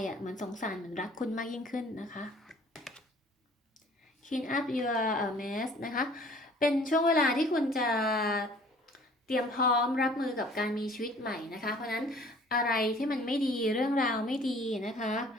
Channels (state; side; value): normal; both; correlation 0.52